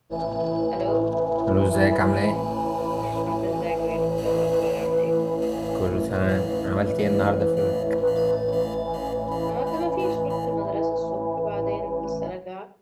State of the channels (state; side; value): identical; both; correlation 1.00